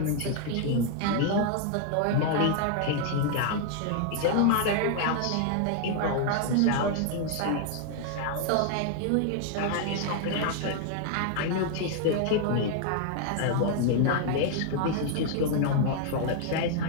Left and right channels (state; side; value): different; both; correlation 0.00